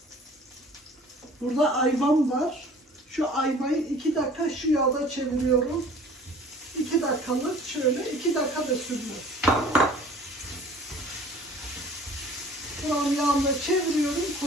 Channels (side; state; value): both; normal; correlation 0.49